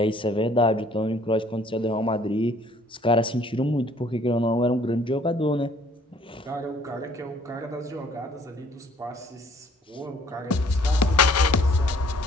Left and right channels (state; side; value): normal; both; correlation 0.58